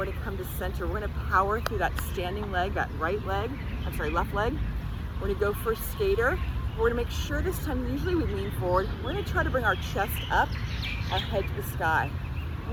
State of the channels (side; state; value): both; identical; correlation 1.00